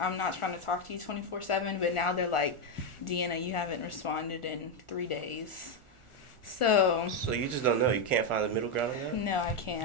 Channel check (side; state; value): right; late; 1.4 ms